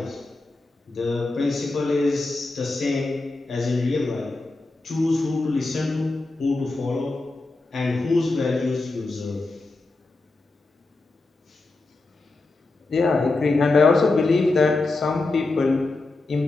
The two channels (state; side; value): quieter; right; 3.2 dB